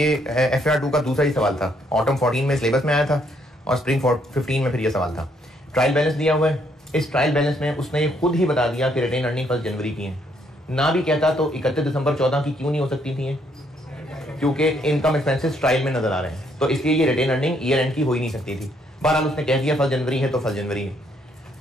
FAR 2 का दूसरा ही सवाल था। ऑटम 14 में सिलेबस में आया था और स्प्रिंग 15 में फिर ये सवाल था। ट्रायल बैलेंस दिया हुआ है। इस ट्रायल बैलेंस में उसने ये खुद ही बता दिया कि रिटेन अर्निंग 1 जनवरी की है। ना भी कहता तो 31 दिसंबर 14 की क्यों नहीं हो सकती थी, क्योंकि इनकम एक्सपेंसेस ट्रायल में नजर आ रहे हैं, तो इसलिए ये रिटेन अर्निंग ईयर एंड की हो ही नहीं सकती थी। बहरहाल उसने कह दिया 1 जनवरी है तो 1 जनवरी है।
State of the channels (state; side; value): normal; both; correlation 0.70